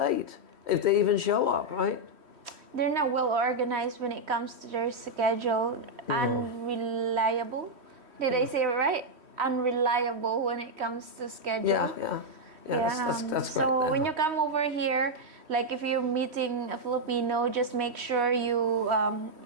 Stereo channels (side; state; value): left; late; 3.1 ms